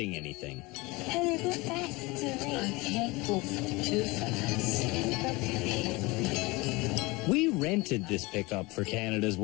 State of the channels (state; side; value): quieter; right; 23.7 dB